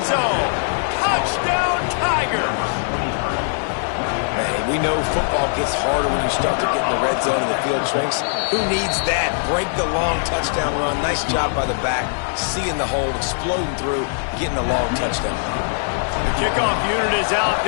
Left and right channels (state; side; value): silent; right; digital silence